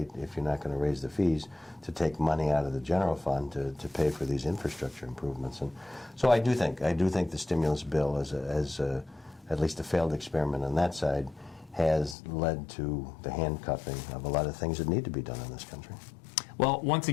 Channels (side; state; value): right; drops out; at 12.2 s